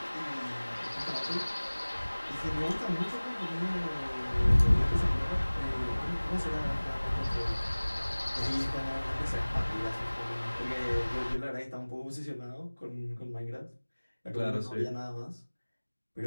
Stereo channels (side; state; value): both; inverted; correlation -1.00